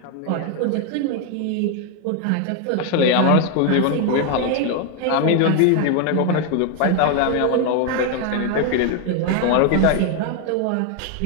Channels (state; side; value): different; both; correlation 0.01